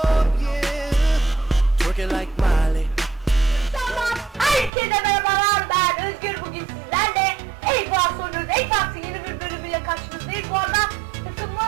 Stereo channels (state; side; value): drops out; left; at 4.7 s